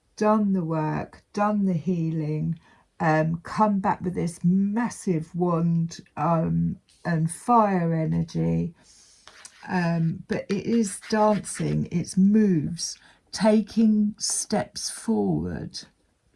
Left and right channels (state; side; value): identical; both; correlation 1.00